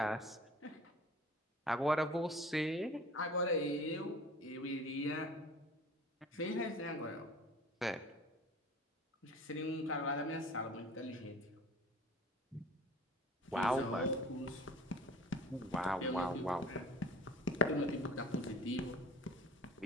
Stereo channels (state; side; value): normal; both; correlation 0.44